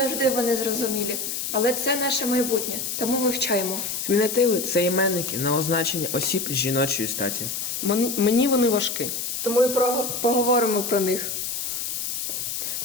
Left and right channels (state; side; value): noise; left; hiss, 3 dB below the sound